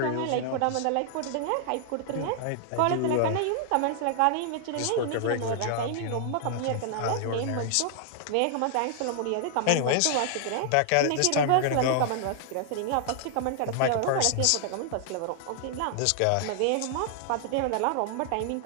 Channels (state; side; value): different; both; correlation -0.01